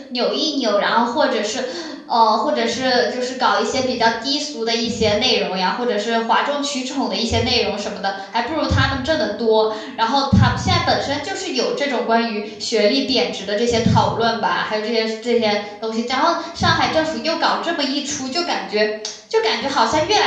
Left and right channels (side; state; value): both; identical; correlation 1.00